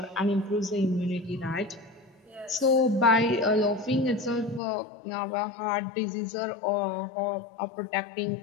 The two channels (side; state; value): right; drops out; at 4.6 s